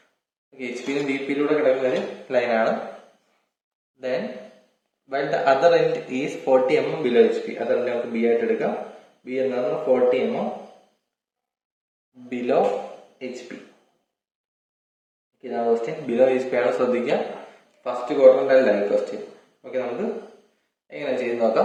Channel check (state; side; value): identical; both; correlation 1.00